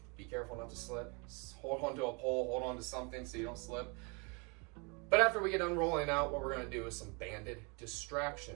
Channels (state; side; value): quieter; left; 32.1 dB